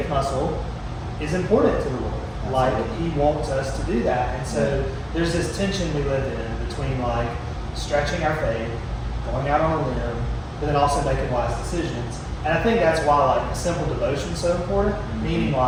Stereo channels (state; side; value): identical; both; correlation 1.00